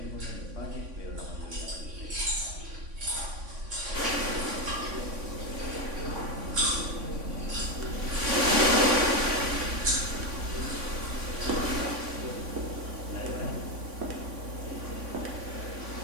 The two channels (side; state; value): left; late; 3.6 ms